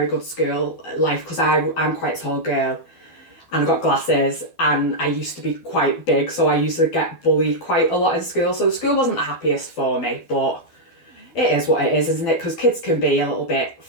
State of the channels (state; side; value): late; right; 12 ms